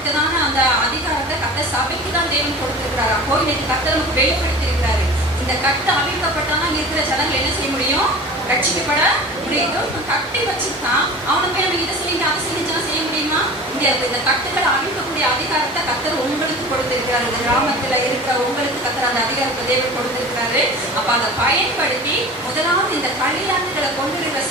அந்த அதிகாரத்தை கட்ட சபைக்கு தான் தேவன் கொடுத்திருக்கிறாரு. அப்போ இன்னைக்கு கட்ட நமக்கு வெளிப்படுத்தி இருக்கிறாரு. இந்த கட்டு அவிழ்க்கப்பட்டாதான் இருக்கிற ஜனங்கள் என்ன செய்ய முடியும்? ரட்சிக்கப்பட முடியும். கட்டி வச்சுதான் அவனை போய் நம்ம இதை சொல்லி அதை செஞ்சுதான் செய்ய முடியுமா? இந்த கட்டுகளை அழிக்கக்கூடிய அதிகாரத்தை கத்தர் உங்களுக்கு கொடுத்திருக்கிறாரு. இந்த கிராமத்துல இருக்கிற உங்களுக்கு கத்தர் அந்த அதிகாரத்தை தேவன் கொடுத்திருக்கிறாரு. அப்ப அதை பயன்படுத்தி முதலாவது இந்த களியாட்டுகளை கொண்டு இருக்கிற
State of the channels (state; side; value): normal; both; correlation 0.37